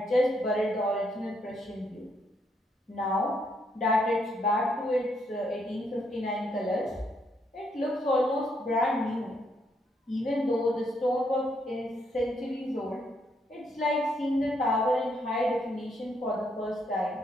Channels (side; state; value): both; normal; correlation 0.75